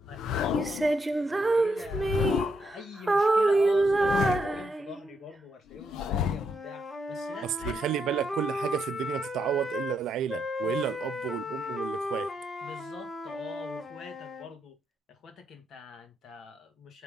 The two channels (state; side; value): normal; both; correlation 0.79